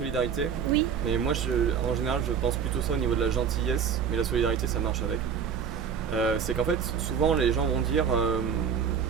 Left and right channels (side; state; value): left; quieter; 7.2 dB